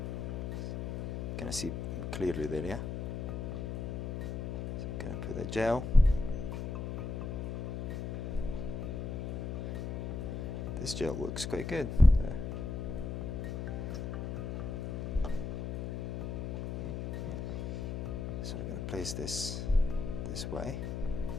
Can I see clearly there? Yeah. So I'm going to put the gel. This gel looks quite good. So we're going to place this way.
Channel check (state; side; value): noise; left; hum, 3 dB below the sound